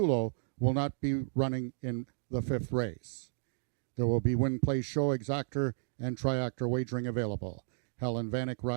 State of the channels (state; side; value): silent; left; digital silence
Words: will not be running in the 5th race. There will be win, play, show, exactor, and triactor wagering available. Helen Vanek